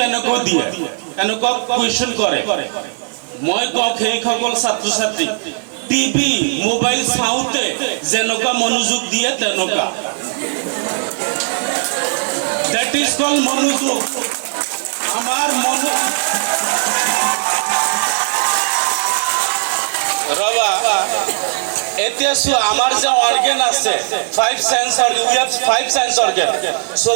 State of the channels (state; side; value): silent; left; digital silence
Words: দিয়ে, এনেকুৱা কুৱেশ্যন কৰে, মই কওঁ সেইসকল ছাত্ৰ ছাত্ৰী টিভি মোবাইল চাওঁতে যেনেকুৱা মনোযোগ দিয়ে তেনেকুৱা, দেট ইজ কল মনোযোগ। আমাৰ ৰবা এতিয়া আমাৰ যে অৰ্গেন আছে 5 sense organ, we have 5 sense organ,